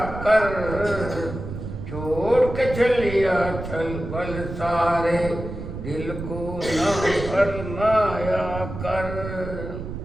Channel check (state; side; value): noise; right; rumble, 8 dB below the sound